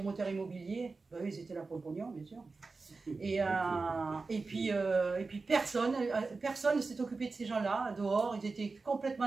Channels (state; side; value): quieter; left; 4.0 dB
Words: immobiliers, ben, ils étaient là pour le pognon, bien sûr. Et puis personne ne s'est occupé de ces gens-là, dehors, ils étaient